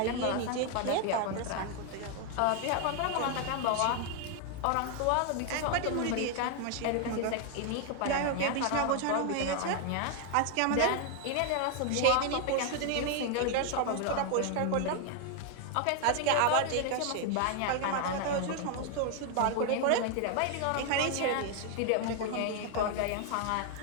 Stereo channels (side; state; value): both; different; correlation 0.00